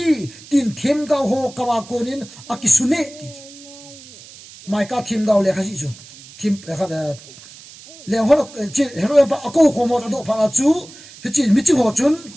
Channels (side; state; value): right; noise; hiss, 19 dB below the sound